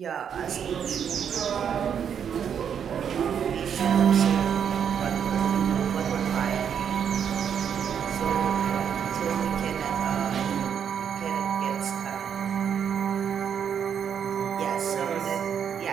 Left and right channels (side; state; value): left; quieter; 8.0 dB